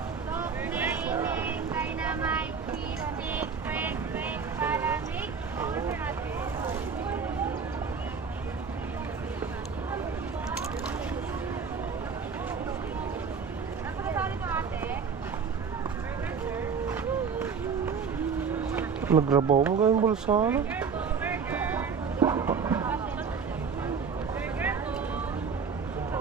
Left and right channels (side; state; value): left; quieter; 5.8 dB